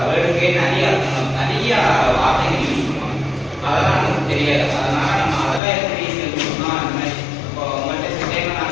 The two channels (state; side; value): drops out; right; at 5.6 s